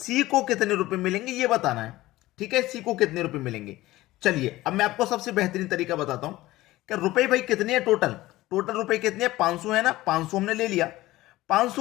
को कितने रुपए मिलेंगे ये बताना है। ठीक है, सी को कितने रुपए मिलेंगे। चलिए अब मैं आपको सबसे बेहतरीन तरीका बताता हूं कि रुपए भाई कितने हैं। टोटल रुपए कितने हैं? 500 है ना। 500 हमने ले लिया।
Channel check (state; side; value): quieter; right; 17.4 dB